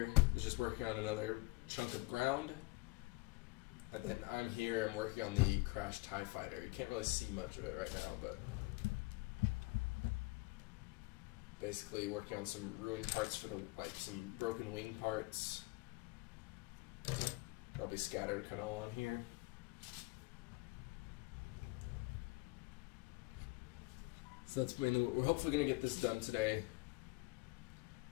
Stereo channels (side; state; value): right; quieter; 23.7 dB